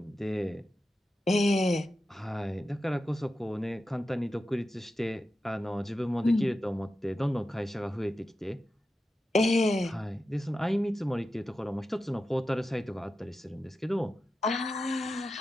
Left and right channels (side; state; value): both; normal; correlation 0.91